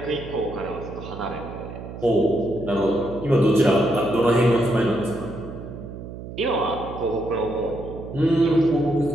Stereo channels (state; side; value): noise; right; hum, 11 dB below the sound